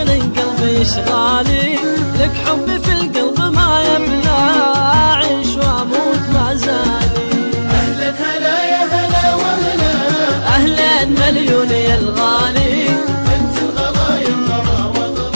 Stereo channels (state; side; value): inverted; both; correlation -1.00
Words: قلبي اشغالي، لك حبي في القلب ما يبلى، اعيش واموت ما زالي. اهلا هلا يا هلا وهلا، اهلا مليون يا الغالي، انت الغلا يا الغلا